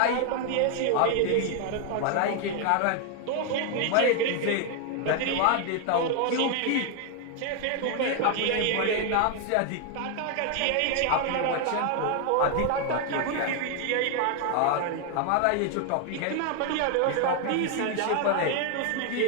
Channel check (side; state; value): both; different; correlation 0.00